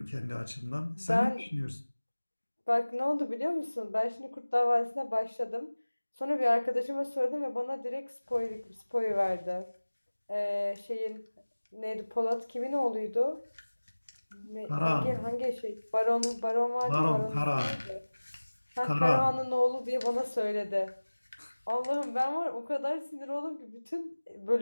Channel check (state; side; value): inverted; both; correlation -1.00